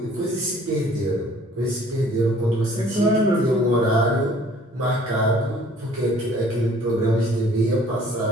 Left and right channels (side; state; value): both; normal; correlation 0.55